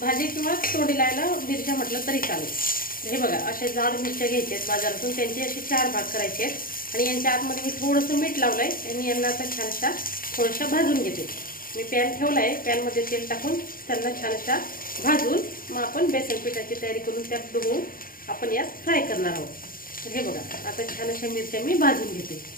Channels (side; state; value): right; late; 0.41 ms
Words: किंवा तोंडी लावायला मिरच्या म्हटलं तरी चालेल। हे बघा, अशा जाड मिरच्या घ्यायच्या आहेत बाजारातून, त्यांचे असे 4 भाग करायचे आहेत आणि यांच्या आतमध्ये मी थोडंसं मीठ लावलंय आणि यांना आता छान अशा थोड्याशा भाजून घेते। मी पॅन ठेवलाय, पॅनमध्ये तेल टाकून त्यांना छान अशा भाजून मग आपण बेसन पिठाची तयारी करून त्यात डुबवून आपण यात फ्राय करणार आहोत। हे बघा, आता छान अशा मिरच्या मी भाजून घेते।